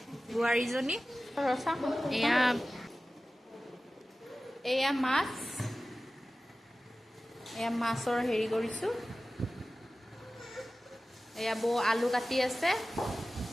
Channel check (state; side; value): normal; both; correlation 0.96